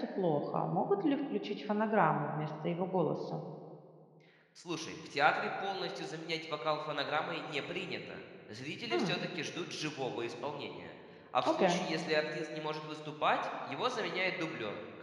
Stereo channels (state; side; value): identical; both; correlation 1.00